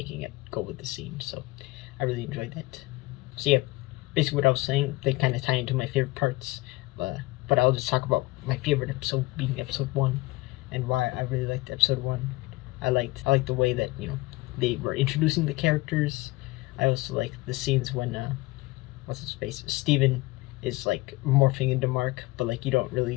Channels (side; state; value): right; quieter; 21.1 dB